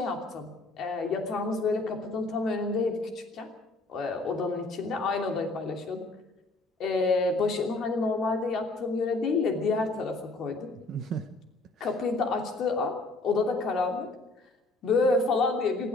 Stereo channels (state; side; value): quieter; right; 3.1 dB